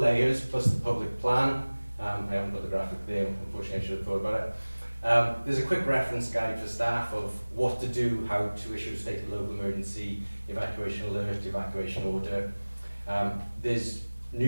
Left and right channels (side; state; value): both; inverted; correlation -1.00